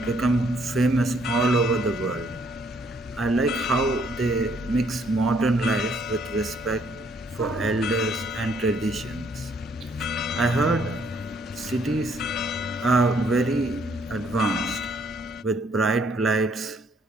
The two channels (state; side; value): normal; both; correlation 0.66